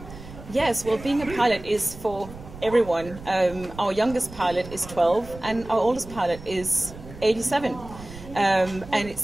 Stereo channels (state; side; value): noise; right; rumble, 15 dB below the sound